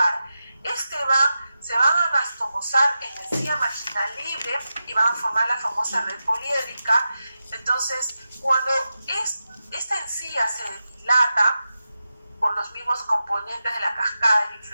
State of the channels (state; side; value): inverted; both; correlation -0.91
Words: Este BAM se van a anastomosar en la encía marginal libre y van a formar la famosa red poliédrica. Entonces, cuando esta encía se dilata por los mismos componentes de la cascada de la